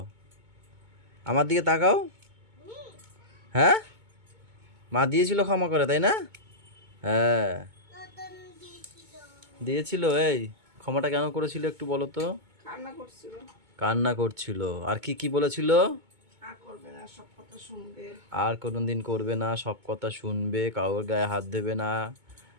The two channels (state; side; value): late; left; 2.2 ms